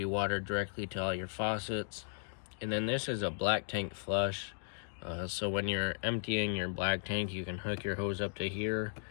water directly to all your faucets. And then this is a black tank flush. So when you're emptying your black tank, you can hook your hose up to here,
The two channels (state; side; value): silent; right; digital silence